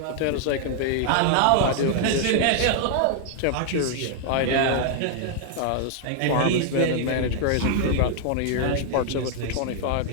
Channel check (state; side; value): different; both; correlation 0.00